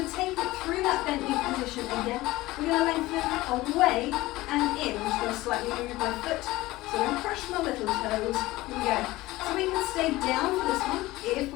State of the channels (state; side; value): quieter; right; 18.5 dB